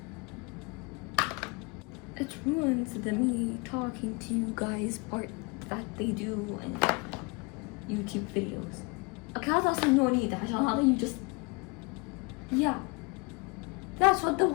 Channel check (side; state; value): right; quieter; 29.4 dB